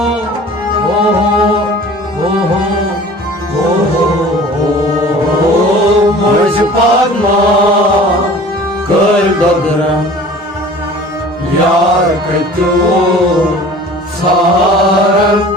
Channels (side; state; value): both; normal; correlation 0.44